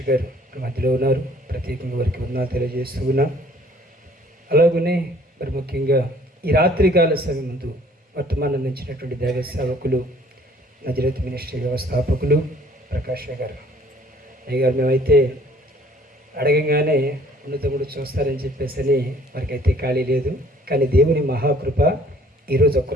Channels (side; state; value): both; normal; correlation 0.57